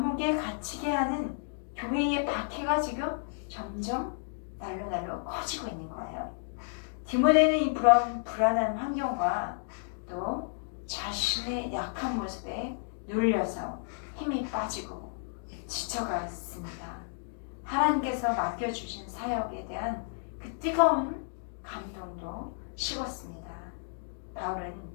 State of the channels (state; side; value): silent; right; digital silence